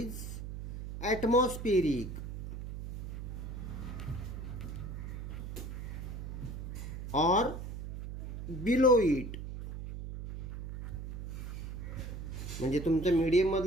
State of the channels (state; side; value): noise; right; hum, 7 dB below the sound